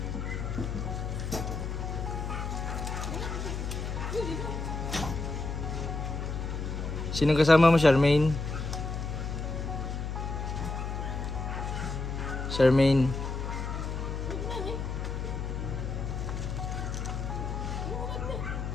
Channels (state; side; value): noise; left; hum, 3 dB below the sound